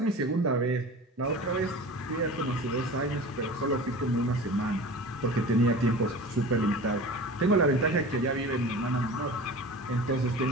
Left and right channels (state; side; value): normal; both; correlation 0.36